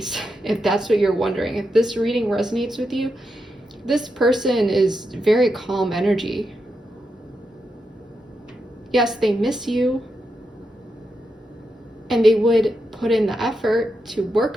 if that's what you're wondering. If this reading resonates with you, this person is very calm energy. Yes, they miss you, and they would put in the effort to work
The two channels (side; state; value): both; normal; correlation 0.85